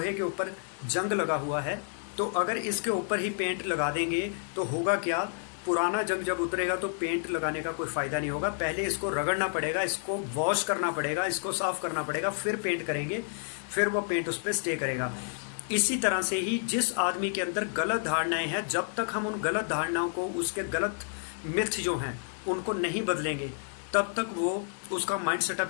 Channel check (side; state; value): right; silent; digital silence